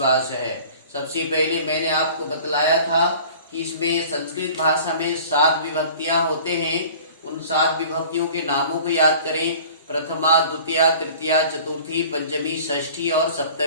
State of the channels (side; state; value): both; inverted; correlation -0.46